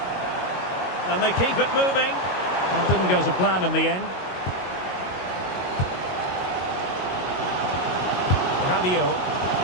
And they keep it moving. Well, didn't go to plan in the end. Rabiot.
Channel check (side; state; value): right; late; 22 ms